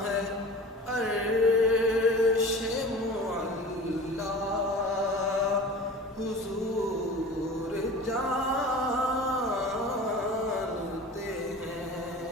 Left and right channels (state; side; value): normal; both; correlation 0.38